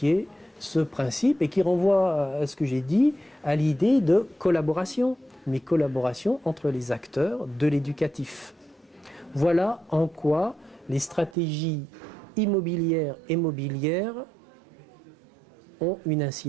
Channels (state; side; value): drops out; left; at 11.4 s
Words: ce principe et qui renvoie à ce que j'ai dit, à l'idée de collaboration, mais collaboration entre les acteurs de l'éducatif. Voilà en quoi les stratégies immobilières et mobilières ont une